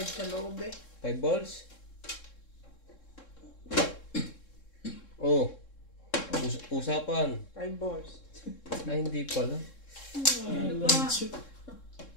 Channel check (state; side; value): late; right; 3.7 ms